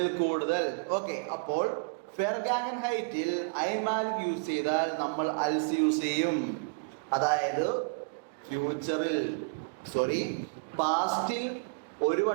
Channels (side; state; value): left; quieter; 36.9 dB